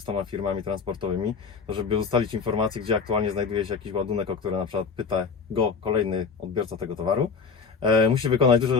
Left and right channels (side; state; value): right; quieter; 5.4 dB